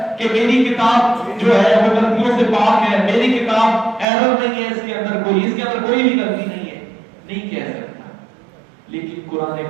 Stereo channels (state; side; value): drops out; left; at 4.0 s